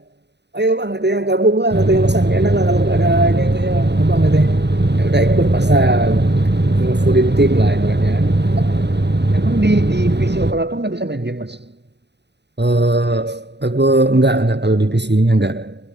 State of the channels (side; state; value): left; late; 0.50 ms